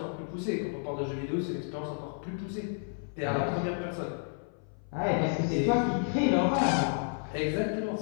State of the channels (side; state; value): right; silent; 55 dB below the other